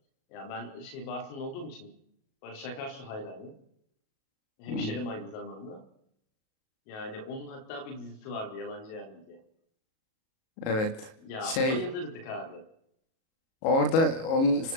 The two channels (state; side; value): late; right; 37 ms